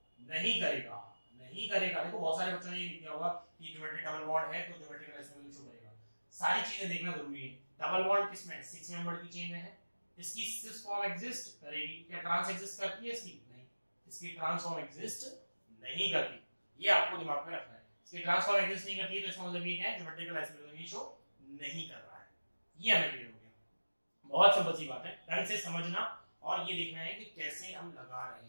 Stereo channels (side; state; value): both; inverted; correlation -1.00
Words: नहीं करेगा, नहीं करेगा। देखो बहुत सारे बच्चों ने ये लिखा होगा कि ज्योमेट्रिक डबल बॉन्ड है तो ज्योमेट्रिकल आइसोमेरिज्म शो करेगा। सारी चीजें देखना जरूरी है। डबल बॉन्ड किसमें? 6 मेंबर की चेन में है, इसकी सिस फॉर्म एग्जिस्ट करेगी। क्या ट्रांस एग्जिस्ट करती है इसकी? नहीं, इसकी ट्रांस फॉर्म एग्जिस्ट नहीं करती, ये आपको दिमाग में रखना है। इसकी ट्रांस फॉर्म एग्जिस्ट नहीं करती है तो इसका मतलब ये है ज्योमेट्रिकल आइसोमेरिज्म ये शो नहीं कर रहा है। ये हमें क्लियर हो गया। बहुत सिंपल सी बात है, ढंग से समझना और ये देखना है कि कैसे हम लगा रहे